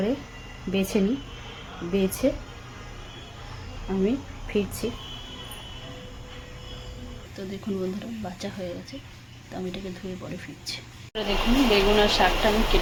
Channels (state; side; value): identical; both; correlation 1.00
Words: বেছে নিই, বেছে আমি ফিরছি। তো দেখুন বন্ধুরা, বাঁচা হয়ে গেছে। তো আমি এটাকে ধুয়ে পরে ফিরছি। দেখুন বেগুন আর শাকটা আমি